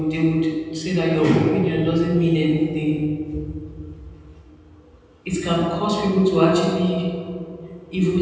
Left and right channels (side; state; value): both; identical; correlation 1.00